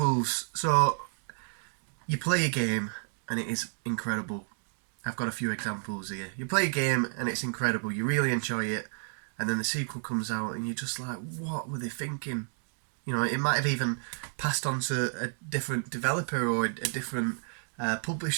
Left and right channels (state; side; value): silent; left; digital silence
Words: So, you play a game and it is incredible. I've got a few examples here. You play a game and it's incredible. You really enjoy it, and then the sequel comes out and you're just like, what were they thinking? You know, it might have even passed on to a different developer or a different